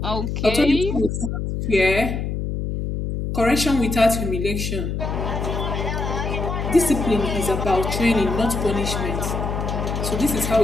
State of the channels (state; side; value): noise; left; hum, 3 dB below the sound